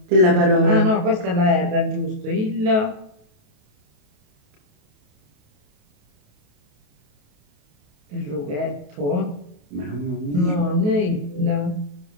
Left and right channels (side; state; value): left; late; 28 ms